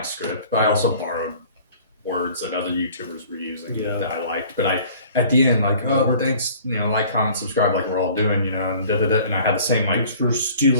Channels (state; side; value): inverted; both; correlation -0.49